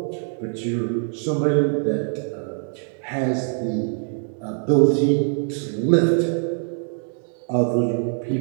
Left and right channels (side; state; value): left; silent; 63 dB below the other